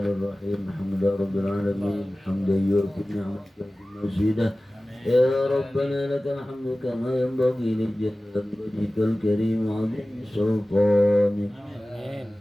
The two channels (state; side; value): normal; both; correlation 0.97